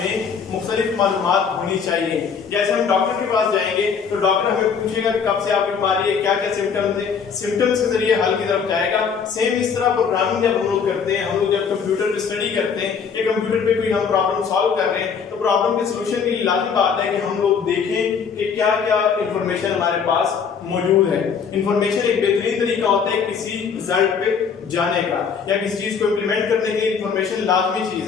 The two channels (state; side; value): quieter; right; 6.4 dB